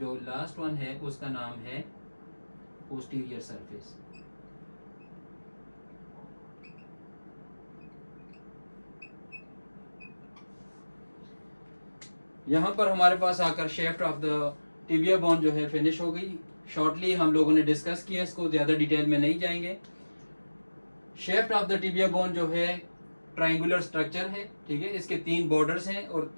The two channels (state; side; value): inverted; both; correlation -1.00